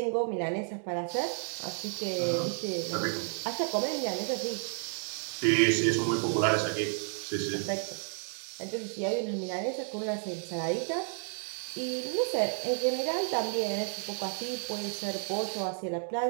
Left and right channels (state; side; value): silent; left; 57 dB below the other